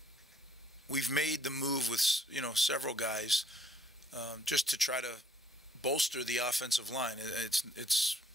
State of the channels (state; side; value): normal; both; correlation 0.65